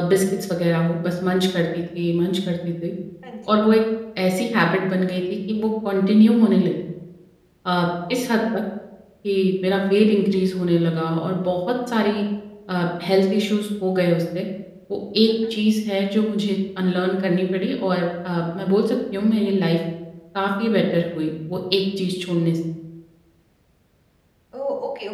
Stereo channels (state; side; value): identical; both; correlation 1.00